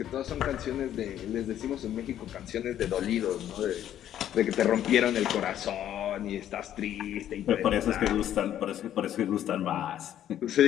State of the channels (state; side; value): quieter; right; 11.2 dB